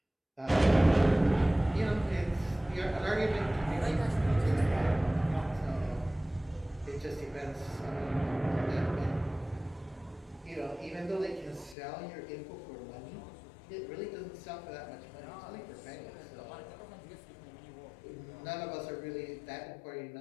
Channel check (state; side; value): drops out; right; at 11.8 s